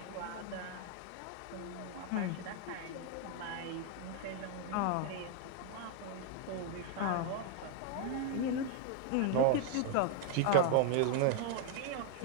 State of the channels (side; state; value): both; different; correlation 0.00